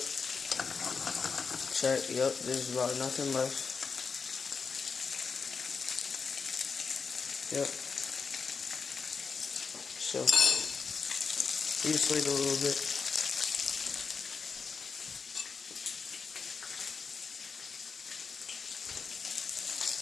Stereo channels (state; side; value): quieter; right; 5.4 dB